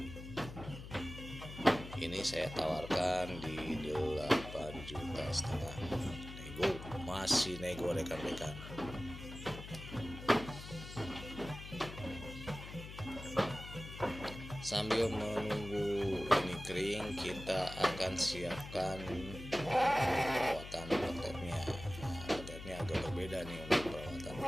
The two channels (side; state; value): left; noise; hum, 11 dB below the sound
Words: Ini saya tawarkan di 8,5 juta. Nego, masih nego rekan-rekan. Sambil menunggu ini kering, kita akan siapkan perawatan ototnya. Nah, ototnya agak berbeda nih untuk perawatan